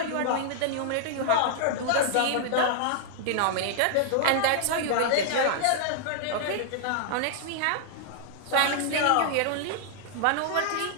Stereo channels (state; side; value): different; both; correlation -0.01